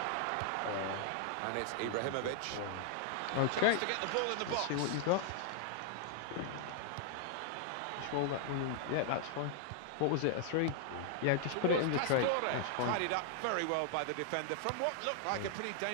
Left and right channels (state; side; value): different; both; correlation 0.00